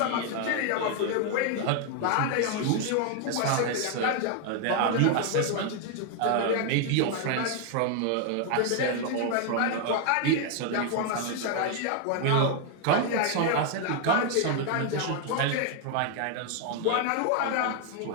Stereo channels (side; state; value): both; different; correlation 0.01